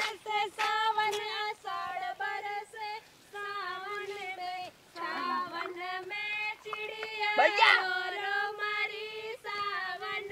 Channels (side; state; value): both; identical; correlation 1.00